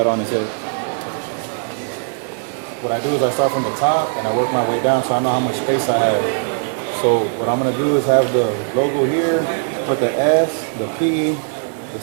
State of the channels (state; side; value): silent; left; digital silence